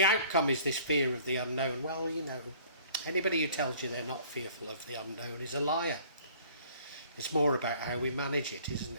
outcome is this fear of the unknown. Well, you know, anybody who tells you they're not fearful of the unknown is a liar. It's more about how we manage it, isn't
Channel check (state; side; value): inverted; both; correlation -0.53